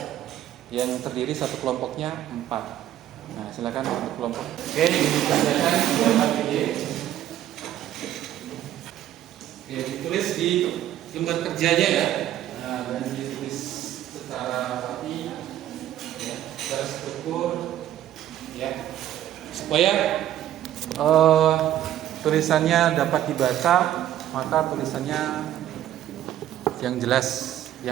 yang terdiri satu kelompoknya 4. Nah, silakan untuk kelompok. Oke, dibacakan ini. Oke, ditulis di lembar kerjanya ya. Nah, dan ditulis secara rapi ya, secara struktur ya, supaya tulisannya dapat dibaca, maka tulisannya yang jelas,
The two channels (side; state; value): left; quieter; 12.2 dB